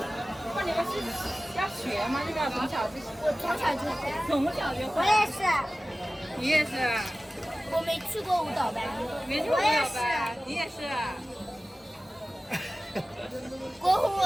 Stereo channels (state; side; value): normal; both; correlation 0.96